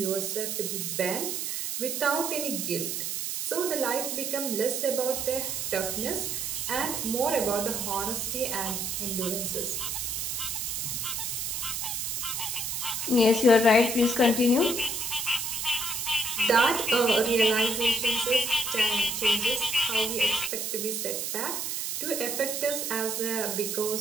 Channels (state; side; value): noise; right; hiss, 2 dB below the sound